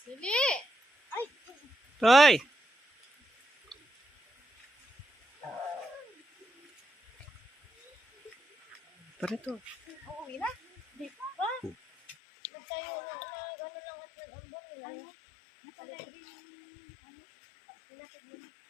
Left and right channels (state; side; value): drops out; right; at 12.2 s